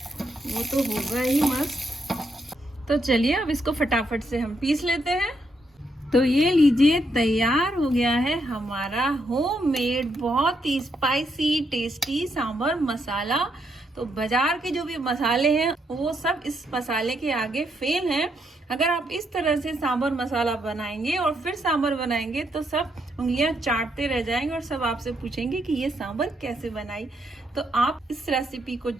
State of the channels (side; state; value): both; normal; correlation 0.77